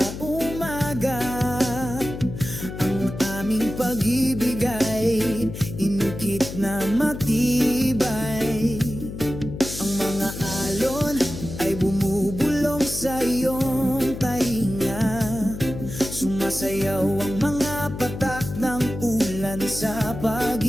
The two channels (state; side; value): noise; left; hum, 9 dB below the sound